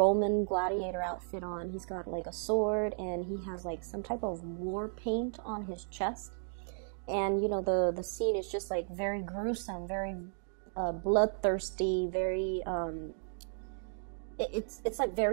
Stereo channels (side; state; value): left; silent; digital silence